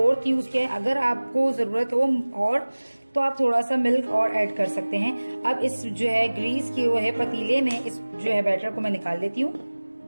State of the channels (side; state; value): both; inverted; correlation -1.00